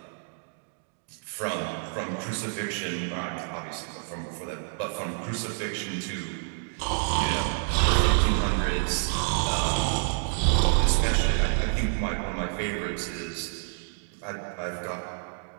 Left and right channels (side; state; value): left; silent; 59 dB below the other